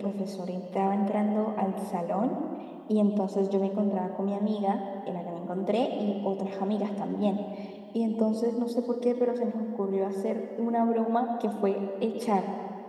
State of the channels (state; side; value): identical; both; correlation 1.00